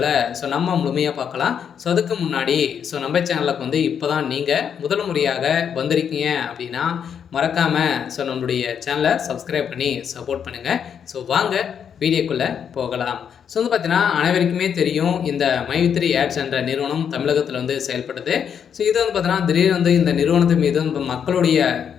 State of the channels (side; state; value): right; quieter; 7.8 dB